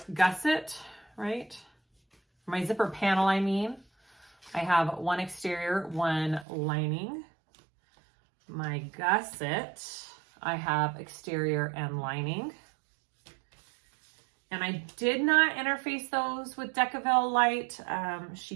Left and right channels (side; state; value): left; drops out; at 6.5 s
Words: gusset, right? My zipper panel, I mean. I have one exterior, one lining. My gusset, I have exterior and lining. And I did not interface those with Decaville Light. She